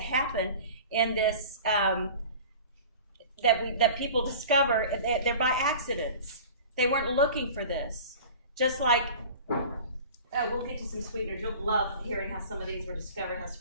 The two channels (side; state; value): both; inverted; correlation -0.40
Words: happen in this that people discover, they're by accidents. They weren't looking for this. Just like, we'll get to some sweeteners. You'll love hearing how some of these were discovered, how